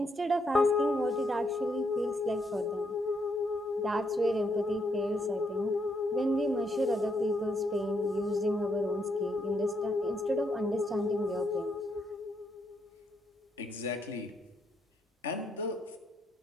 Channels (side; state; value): both; normal; correlation 0.76